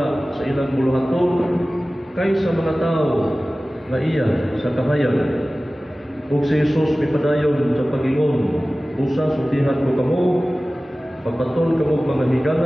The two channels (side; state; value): both; normal; correlation 0.97